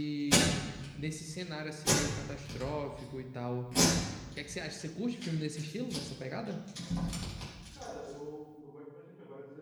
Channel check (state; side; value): identical; both; correlation 1.00